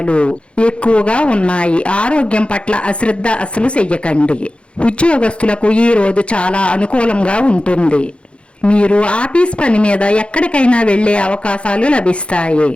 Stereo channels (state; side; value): late; right; 0.059 ms